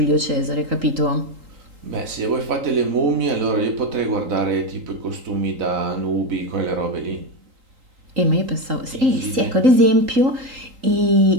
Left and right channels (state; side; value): late; left; 3.8 ms